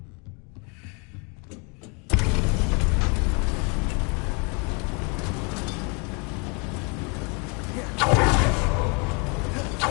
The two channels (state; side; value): quieter; right; 33.4 dB